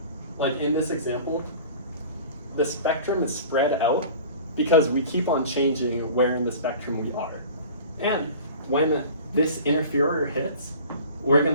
Like in this example, the spectrum is spread out because we keep on changing where in the spectrum we are. And when this interferer hits, we're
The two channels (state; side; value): inverted; both; correlation -0.42